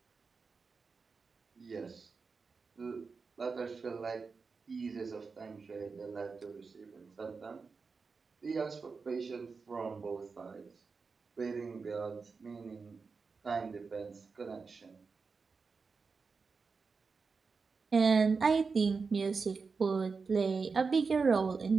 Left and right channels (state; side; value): quieter; left; 4.8 dB